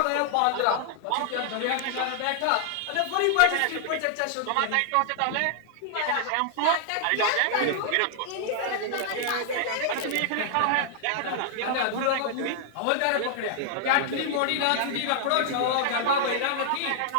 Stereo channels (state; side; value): different; both; correlation 0.00